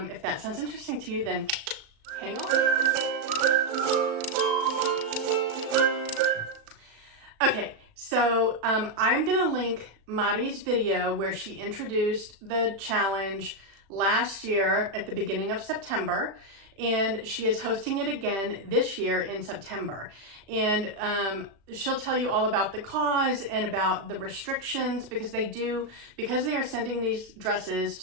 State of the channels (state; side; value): late; left; 36 ms